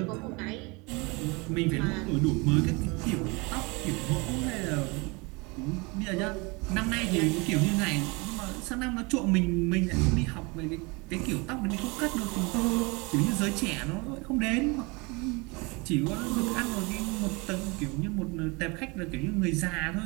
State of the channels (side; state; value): left; quieter; 27.4 dB